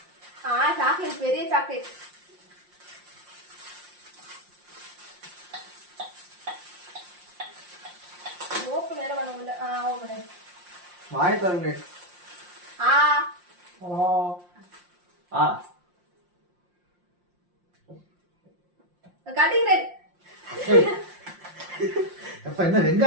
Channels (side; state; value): left; late; 5.7 ms